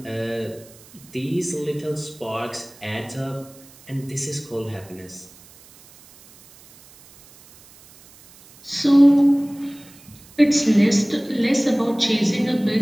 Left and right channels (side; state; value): right; noise; hiss, 24 dB below the sound